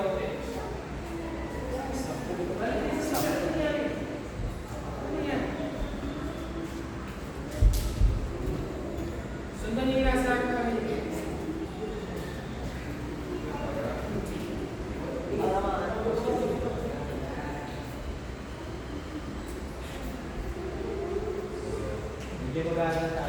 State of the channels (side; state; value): both; identical; correlation 1.00